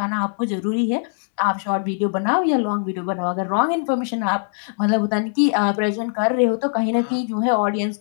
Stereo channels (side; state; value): right; silent; 65 dB below the other